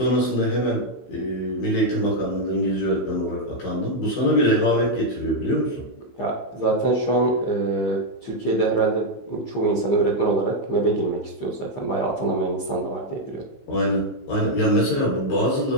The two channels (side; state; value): right; late; 15 ms